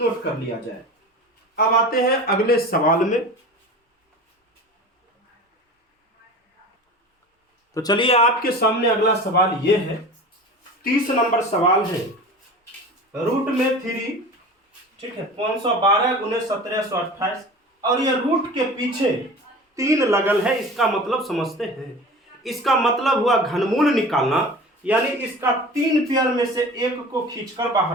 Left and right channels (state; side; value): normal; both; correlation 0.37